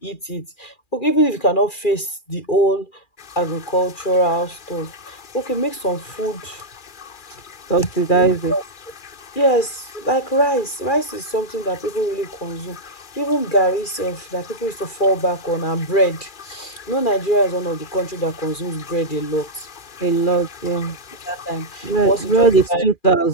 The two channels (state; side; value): late; right; 2.4 ms